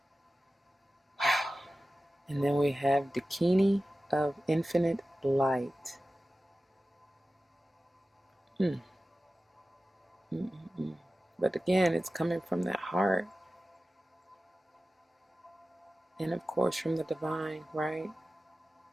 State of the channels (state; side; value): normal; both; correlation 0.95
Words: wow. And then we have Dakini of infinite light. But again, it's coming from that heart. And of course from the divine, right?